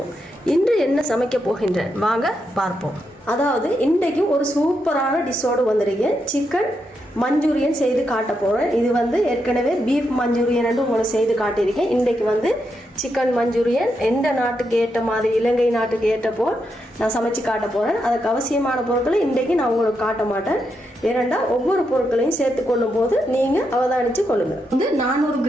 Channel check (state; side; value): normal; both; correlation 0.83